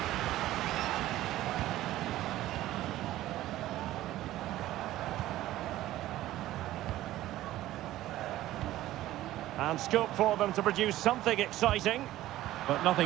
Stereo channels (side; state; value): left; quieter; 15.0 dB